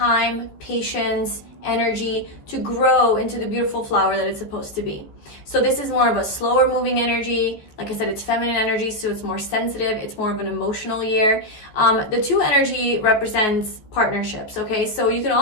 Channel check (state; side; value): late; right; 14 ms